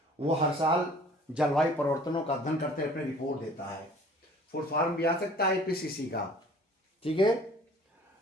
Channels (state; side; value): normal; both; correlation 0.50